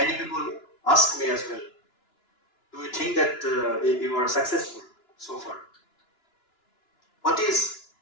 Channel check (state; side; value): late; right; 2.9 ms